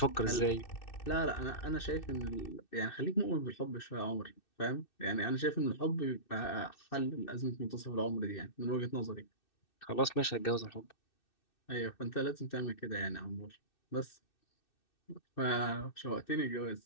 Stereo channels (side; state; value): right; late; 2.6 ms